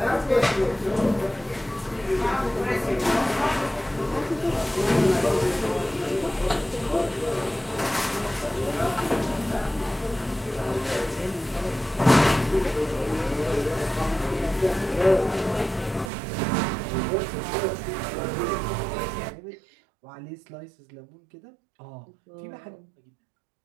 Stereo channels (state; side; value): drops out; left; at 16.1 s